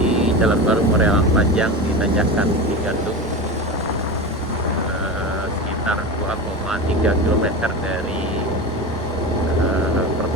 jalan baru Moreal Panjang di Tanjakan Cigandung, sekitar 2,3 km dari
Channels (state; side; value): normal; both; correlation 0.25